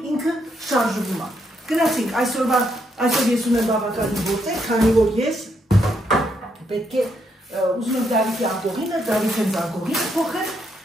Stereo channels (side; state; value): both; normal; correlation 0.77